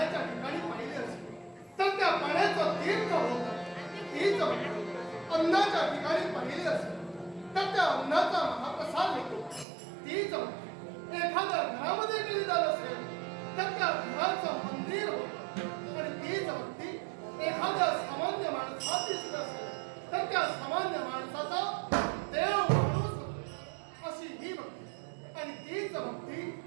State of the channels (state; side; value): drops out; left; at 9.7 s